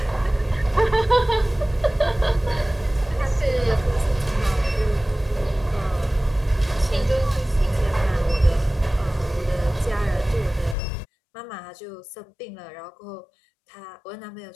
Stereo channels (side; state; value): right; drops out; at 10.8 s